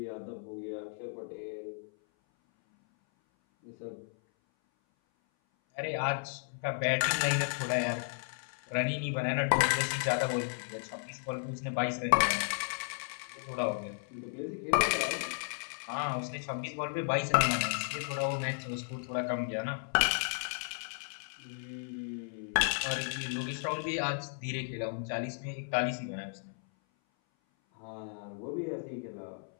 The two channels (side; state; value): right; silent; 55 dB below the other